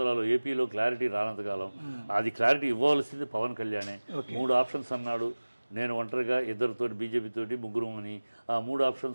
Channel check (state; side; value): inverted; both; correlation -1.00